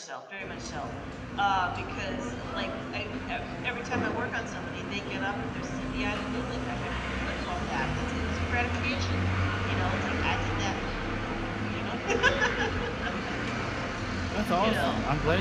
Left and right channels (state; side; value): identical; both; correlation 1.00